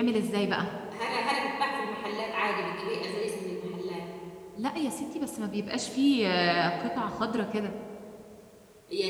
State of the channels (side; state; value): both; identical; correlation 1.00